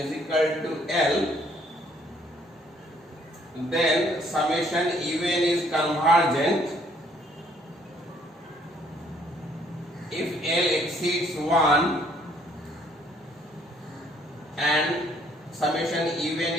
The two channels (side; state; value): both; normal; correlation 0.64